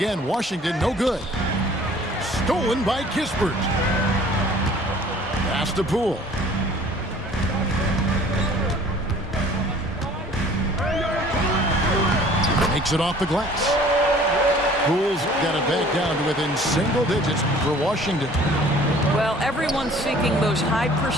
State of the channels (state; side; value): normal; both; correlation 0.51